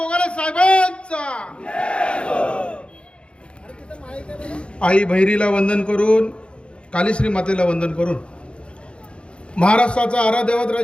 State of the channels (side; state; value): right; late; 0.057 ms